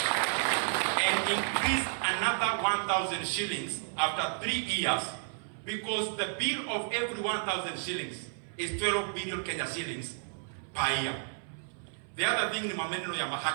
and increase another 1000 shillings after 3 years, because the bill of every 1000 shillings is 12 billion Kenya shillings per year. The other thing ni maneno ya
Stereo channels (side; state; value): left; silent; 56 dB below the other